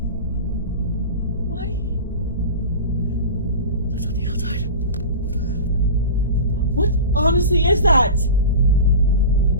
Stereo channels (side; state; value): both; inverted; correlation -0.31